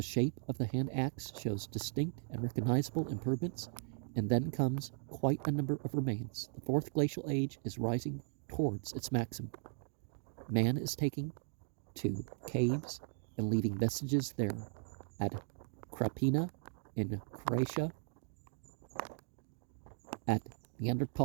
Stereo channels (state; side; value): silent; left; 53 dB below the other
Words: shape of the hand axe shows distinct and recognizable improvements, and then comes quite a number of remains. The fourth glacial age is rising towards its maximum. Man is taking to caves and leaving vestiges there. At Krapina in Croatia, at